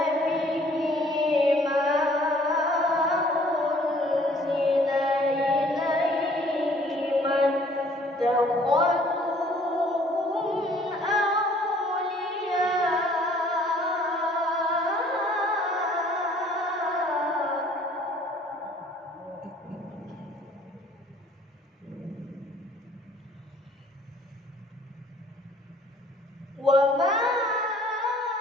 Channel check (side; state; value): both; normal; correlation 0.57